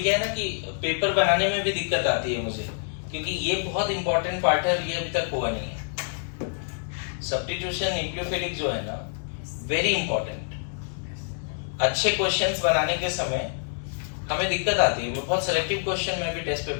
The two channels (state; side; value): silent; right; digital silence